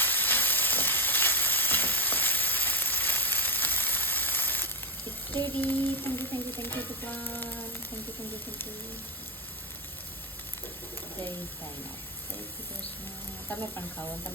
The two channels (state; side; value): normal; both; correlation 0.07